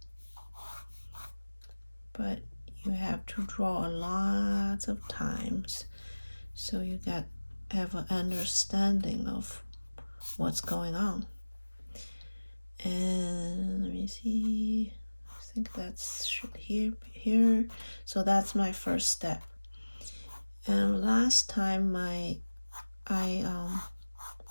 But you have to draw a lot of times so you have an understanding of what's going on. And let me see, I think that's should here. So that's my first step. And last time I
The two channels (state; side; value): inverted; both; correlation -1.00